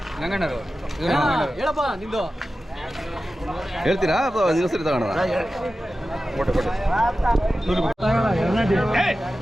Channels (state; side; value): normal; both; correlation 0.94